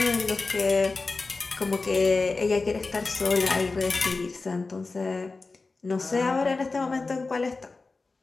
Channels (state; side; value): quieter; right; 3.8 dB